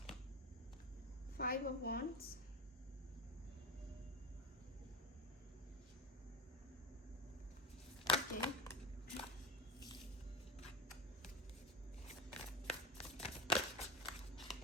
5 of wands, okay,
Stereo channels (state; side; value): normal; both; correlation 0.23